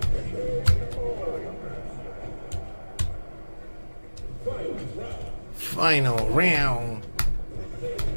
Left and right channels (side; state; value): both; inverted; correlation -1.00